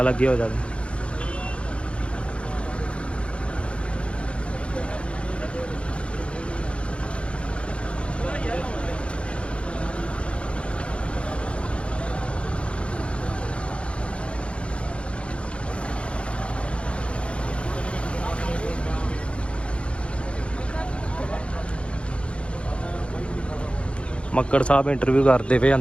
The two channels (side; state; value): right; late; 0.059 ms